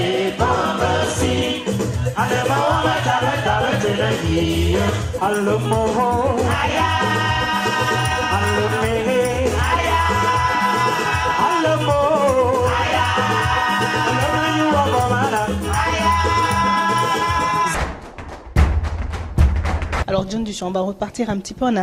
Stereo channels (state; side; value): identical; both; correlation 1.00